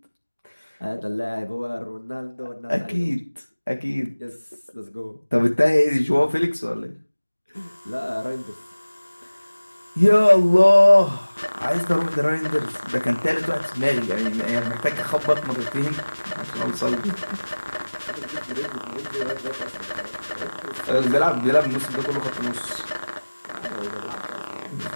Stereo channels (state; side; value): inverted; both; correlation -1.00